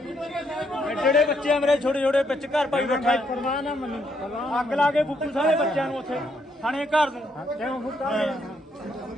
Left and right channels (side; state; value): both; normal; correlation 0.74